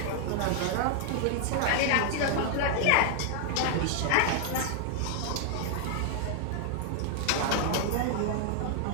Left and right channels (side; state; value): both; different; correlation 0.00